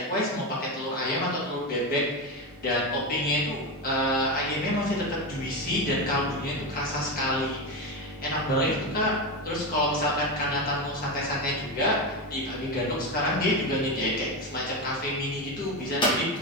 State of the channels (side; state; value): both; normal; correlation 0.15